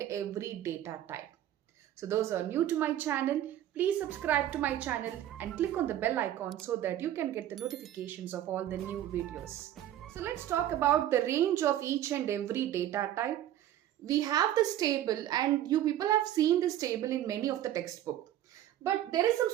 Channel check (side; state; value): left; quieter; 12.2 dB